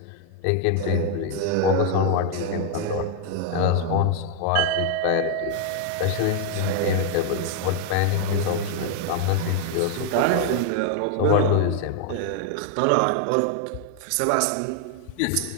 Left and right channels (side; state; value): both; different; correlation 0.00